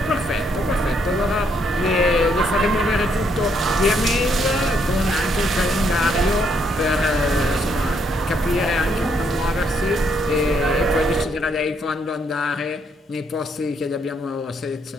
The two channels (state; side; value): normal; both; correlation 0.73